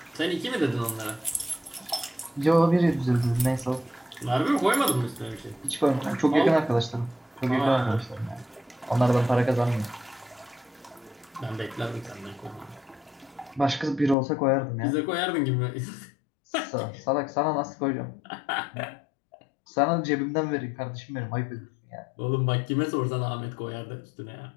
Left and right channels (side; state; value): right; drops out; at 14.2 s